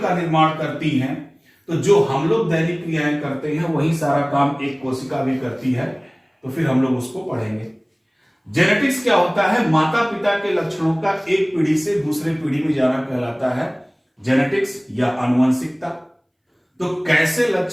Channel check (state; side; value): identical; both; correlation 1.00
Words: का निर्माण करती हैं, तो जो हम लोग दैनिक क्रियाएं करते हैं वही सारा काम एक कोशिका भी करती है, तो फिर हम लोग उसको पढ़ेंगे। जेनेटिक्स क्या होता है? माता पिता के लक्षणों का एक पीढ़ी से दूसरे पीढ़ी में जाना कहलाता है जेनेटिक्स या आनुवंशिकता। तो कैसे